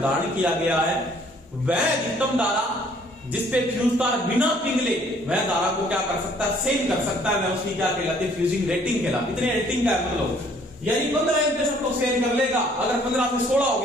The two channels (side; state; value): both; normal; correlation 0.60